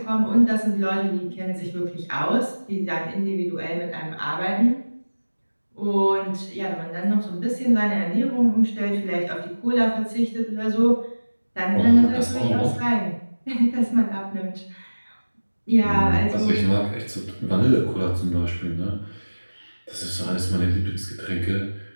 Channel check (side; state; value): both; inverted; correlation -1.00